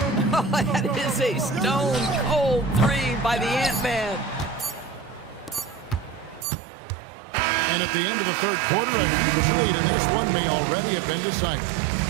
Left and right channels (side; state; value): left; drops out; at 6.5 s